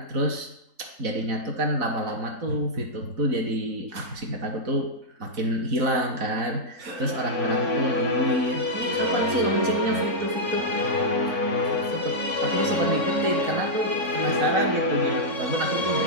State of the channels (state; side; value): late; left; 4.0 ms